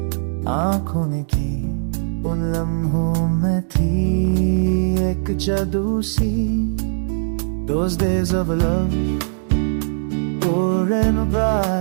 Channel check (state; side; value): silent; left; digital silence